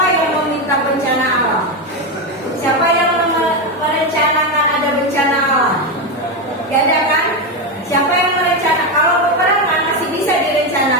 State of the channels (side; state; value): both; normal; correlation 0.10